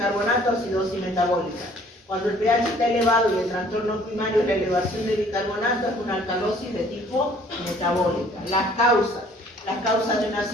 acidosis metabólica. Cuando el pH está elevado y el trastorno primario es la elevación de bicarbonato, es una alcalosis de tipo metabólica. Las causas de una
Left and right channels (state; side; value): normal; both; correlation 0.57